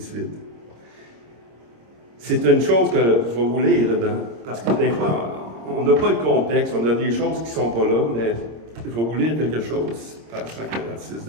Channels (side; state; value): left; late; 26 ms